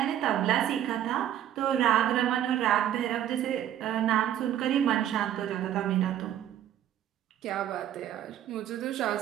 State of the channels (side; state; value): left; quieter; 11.2 dB